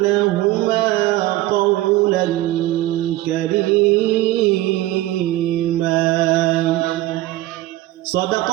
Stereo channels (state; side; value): quieter; left; 16.3 dB